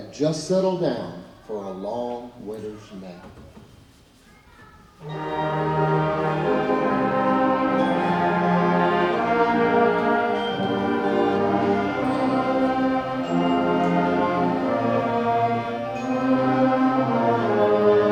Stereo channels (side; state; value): both; identical; correlation 1.00